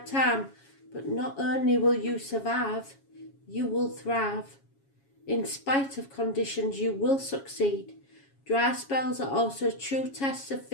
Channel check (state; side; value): late; right; 7.3 ms